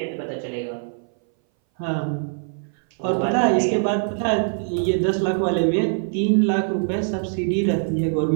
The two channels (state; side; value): silent; left; 60 dB below the other